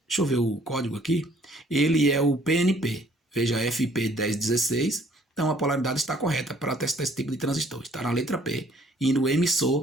Deixa eu ver o código aqui. Ele é o PNP. Veja, FP1016. Então a polaridade está correta para testar esse tipo de transistor. Está na letra P. E no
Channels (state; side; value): normal; both; correlation 0.60